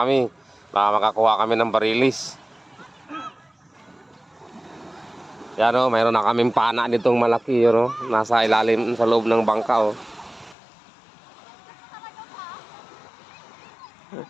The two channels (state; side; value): drops out; right; at 10.6 s